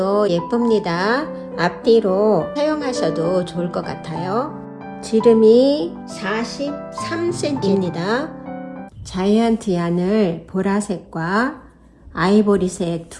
예쁩니다. 앞뒤로 사용하셔도 좋을 것 같아요. 지름이 43cm입니다. 자이언트 얀을 보라색과 아이보리색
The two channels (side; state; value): both; identical; correlation 1.00